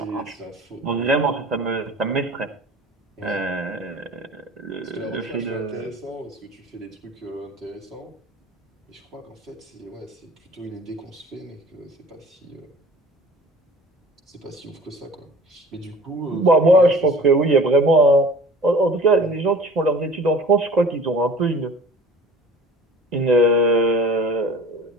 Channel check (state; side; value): normal; both; correlation 0.44